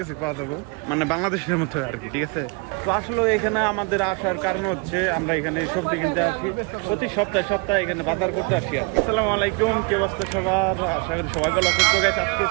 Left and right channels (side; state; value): left; quieter; 30.8 dB